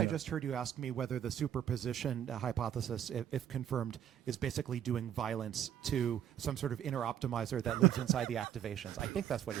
just heard you ask me whether the superposition hypothesis, if confirmed, is basically doing violence to some sort of inner optimizer that lives inside the activations. I think that's what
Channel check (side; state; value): left; quieter; 10.2 dB